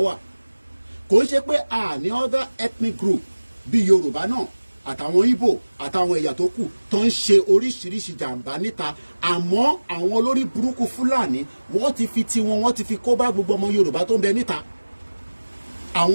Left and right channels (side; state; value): both; inverted; correlation -1.00